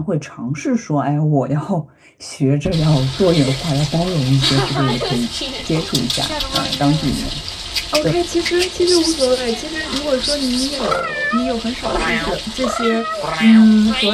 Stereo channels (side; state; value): both; identical; correlation 1.00